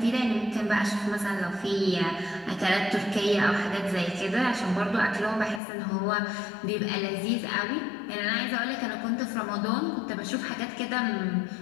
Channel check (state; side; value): drops out; right; at 5.6 s